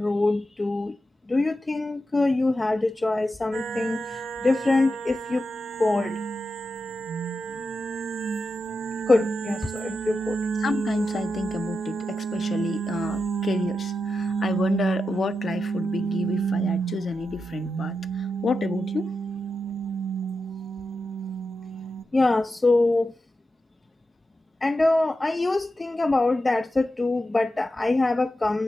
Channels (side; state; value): both; normal; correlation 0.89